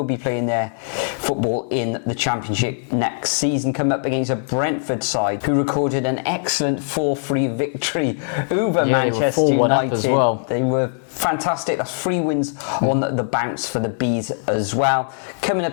be playing their football in the Championship next season, come up against a Brentford side who recorded an excellent 4-3 victory over Manchester United. As well. They were fantastic. That's 3 wins on the bounce for the Bees as well. Coming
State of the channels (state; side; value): silent; right; digital silence